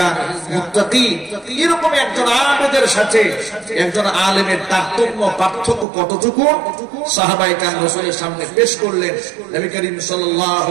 মুত্তাকি। এরকম একজন আবেদের সাথে একজন আলেমের তারতম্য, পার্থক্য কতটুকু সাহাবায়ে কেরাম রাসূলের সামনে পেশ করলেন। নবী করিম সাল্লাল্লাহু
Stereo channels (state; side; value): drops out; left; at 5.9 s